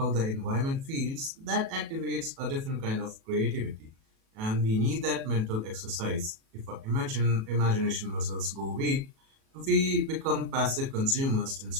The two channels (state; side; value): late; left; 37 ms